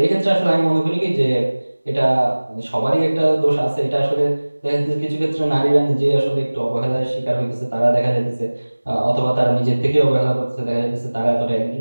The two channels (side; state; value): both; inverted; correlation -1.00